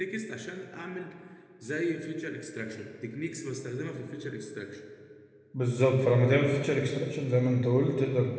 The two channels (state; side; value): identical; both; correlation 1.00